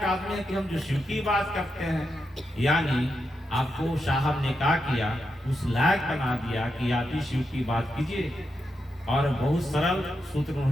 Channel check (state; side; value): normal; both; correlation 0.85